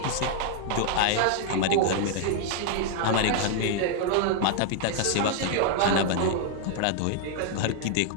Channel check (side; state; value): both; different; correlation -0.01